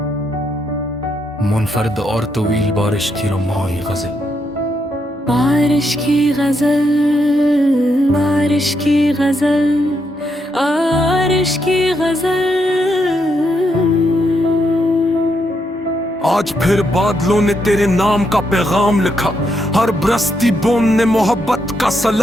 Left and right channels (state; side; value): normal; both; correlation 0.79